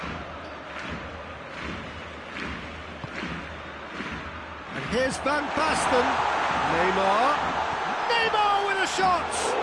And here's Van Basten. Neymar. Neymar with a shot!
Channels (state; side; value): identical; both; correlation 1.00